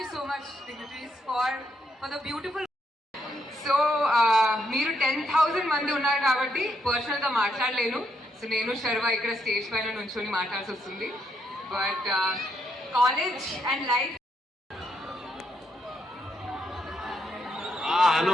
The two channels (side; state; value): both; normal; correlation 0.77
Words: you so much, dignitaries, for the beautiful. So మీరు 10,000 మంది ఉన్నారు కాబట్టి పర్సనల్గా మాట్లాడలేను. సో నేను శర్వ ఇక్కడ స్టేజ్ పైన నుంచొని మాట్లాడాల్సి వస్తుంది. But college and life.